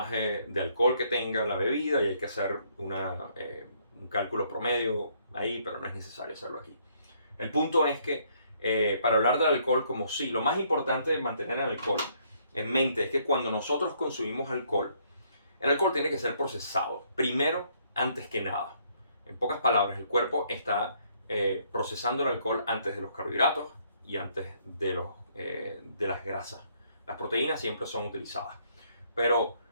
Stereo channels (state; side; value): inverted; both; correlation -0.68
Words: de alcohol que tenga la bebida y hay que hacer un cálculo promedio ahí, pero no es necesario hacerlo aquí. El punto es que para hablar del alcohol como sí, lo más importante de mantener el alcohol en mente es que cuando nosotros consumimos alcohol, el alcohol tiene que ser procesado, primero, antes que nada. En pocas palabras, el cuerpo está procesando el alcohol antes de los carbohidratos y antes de las grasas. Las proteínas siempre son utilizadas. Pero